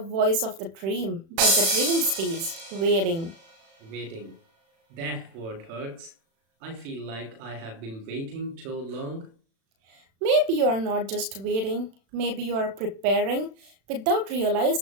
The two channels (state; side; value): late; left; 36 ms